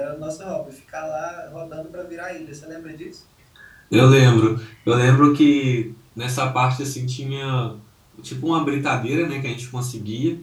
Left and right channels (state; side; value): identical; both; correlation 1.00